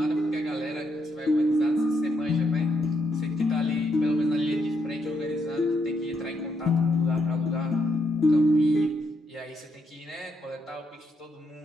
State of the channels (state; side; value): normal; both; correlation 0.77